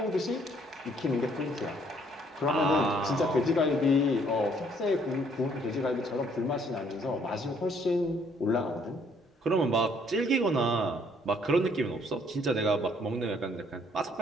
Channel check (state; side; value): normal; both; correlation 0.64